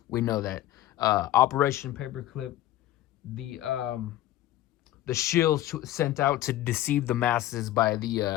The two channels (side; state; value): right; quieter; 14.0 dB